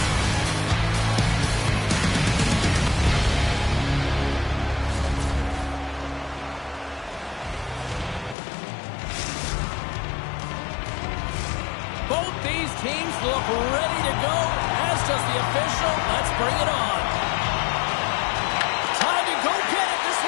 Both these teams look ready to go, as does the official. Let's bring it on. Time to go get it. This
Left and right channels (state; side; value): drops out; right; at 8.3 s